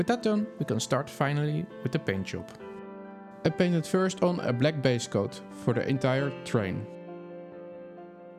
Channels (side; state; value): both; identical; correlation 1.00